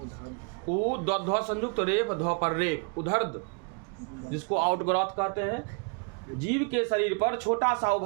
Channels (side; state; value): left; quieter; 34.6 dB